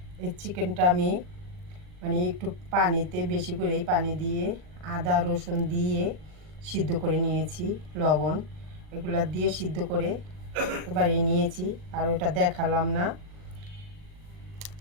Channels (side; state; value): left; late; 39 ms